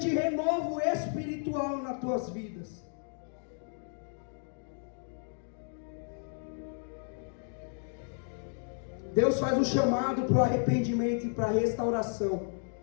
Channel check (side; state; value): right; silent; 56 dB below the other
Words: renovo espiritual nas tuas vidas. Deus faz um chamado para o arrependimento e para a restauração.